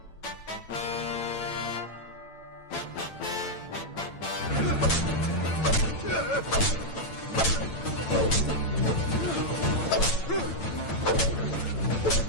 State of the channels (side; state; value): right; late; 8.9 ms